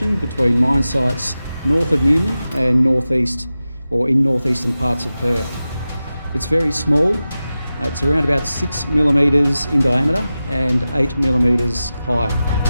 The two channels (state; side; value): inverted; both; correlation -0.94